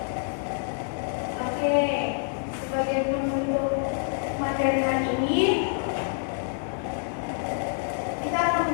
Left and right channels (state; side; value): silent; right; digital silence